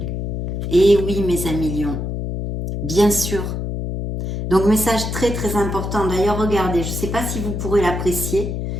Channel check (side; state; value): left; noise; hum, 3 dB below the sound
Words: Et oui, mes amis lions, bien sûr. Donc, message très important. D'ailleurs, regardez, je ne sais pas si vous pourrez l'apprécier.